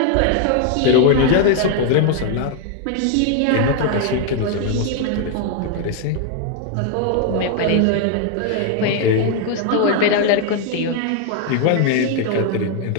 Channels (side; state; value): both; different; correlation 0.00